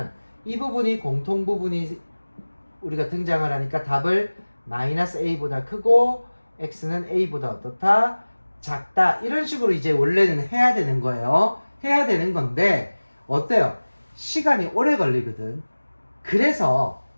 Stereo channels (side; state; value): both; inverted; correlation -1.00